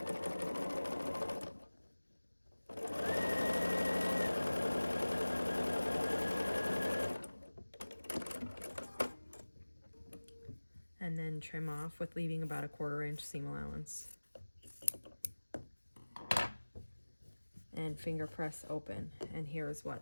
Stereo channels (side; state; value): both; inverted; correlation -1.00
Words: And then trim off with leaving about a 1/4 inch seam allowance. and finger press open. And here's